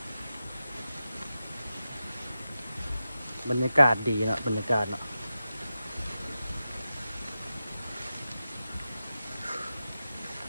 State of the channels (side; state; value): both; inverted; correlation -0.92